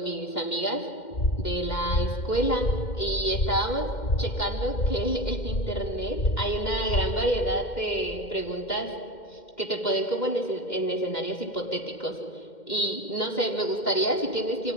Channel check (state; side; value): late; right; 2.1 ms